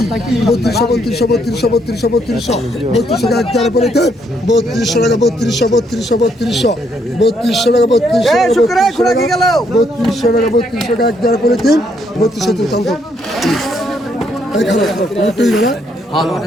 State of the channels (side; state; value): both; normal; correlation 0.72